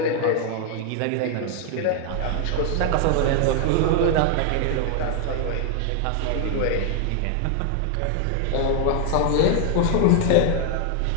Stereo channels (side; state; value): both; different; correlation 0.00